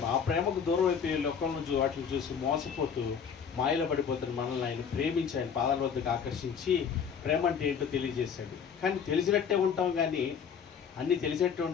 ఆ ప్రేమకు దూరం అయిపోయి లోకంలో వాటిని చూసి మోసపోతూ మాయలో పడిపోతున్న మనల్ని ఆయన ప్రేమించి ఆయన పాదాల వద్దకు ఆకర్షించి ప్రేమ అంటే ఏంటో తెలియజేశాడు. కానీ తెలిసినట్టే ఉంటాం కానీ, అన్నీ తెలిసినట్టే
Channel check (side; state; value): right; quieter; 7.0 dB